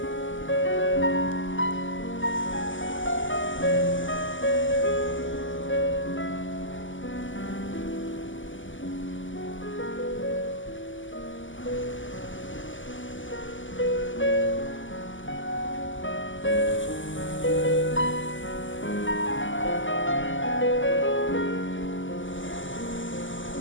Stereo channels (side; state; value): right; late; 0.56 ms